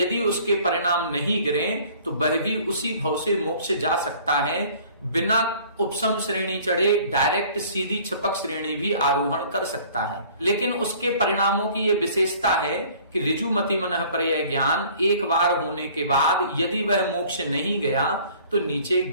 उसके परिणाम नहीं गिरे तो वह भी उसी भव से मोक्ष जा सकता है, बिना उपसम श्रेणी चढ़े डायरेक्ट सीधी छपक श्रेणी भी आरोहण कर सकता है। लेकिन उसके परिणामों की यह विशेषता है कि ऋजुमति मनःपर्यय ज्ञान एक बार होने के बाद यदि वह मोक्ष नहीं गया तो नीचे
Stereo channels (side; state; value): both; inverted; correlation -0.52